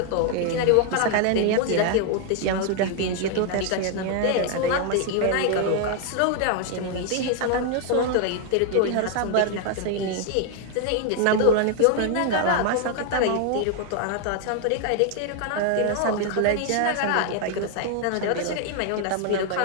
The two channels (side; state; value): both; different; correlation 0.00